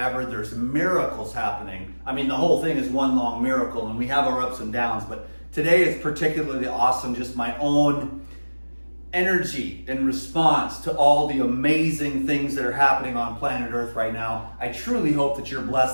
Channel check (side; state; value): both; inverted; correlation -1.00